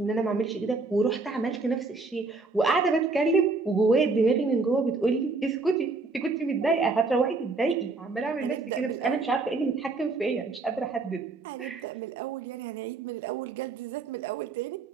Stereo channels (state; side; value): quieter; left; 3.8 dB